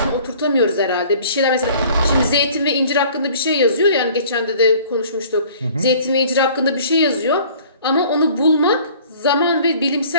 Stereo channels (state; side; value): inverted; both; correlation -0.51